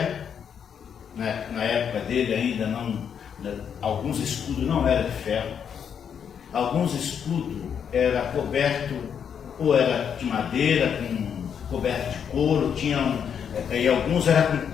né? Na época dele ainda não, alguns escudos não eram de ferro, alguns escudos eram cobertos, ou era de madeira, coberto de couro, e alguns eram com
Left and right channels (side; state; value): right; quieter; 7.8 dB